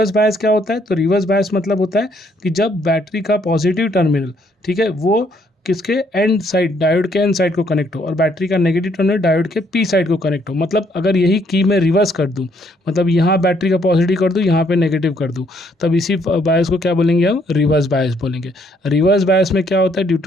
बायस क्या होता है, तो रिवर्स बायस मतलब होता है कि जब बैटरी का पॉजिटिव टर्मिनल, ठीक है, वो किसके, एंड साइड, डायोड के एंड साइड को कनेक्ट हो, और बैटरी का नेगेटिव टर्मिनल डायोड के P साइड को कनेक्ट हो। मतलब अगर यही की मैं रिवर्स कर दूं, मतलब यहाँ बैटरी का पॉजिटिव कर दूं, यहाँ पे नेगेटिव कर दूं, तब इसी बायस को क्या बोलेंगे हम, रिवर्स बायस बोलेंगे। रिवर्स बायस में क्या होता है, ड्यू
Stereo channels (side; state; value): both; normal; correlation 0.68